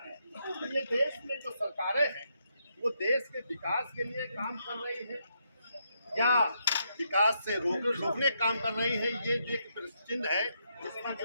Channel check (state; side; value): inverted; both; correlation -0.79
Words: हैं। ये देश में जो सरकारें हैं वो देश के विकास के लिए काम कर रही है या विकास से रोकने काम कर रही है, ये जो एक चिन्ह है जिसका